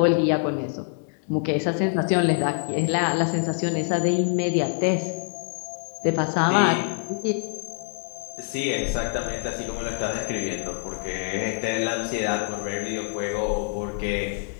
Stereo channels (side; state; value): right; silent; 57 dB below the other